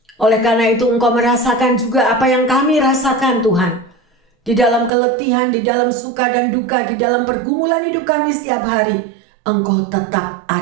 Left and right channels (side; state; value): left; drops out; at 4.9 s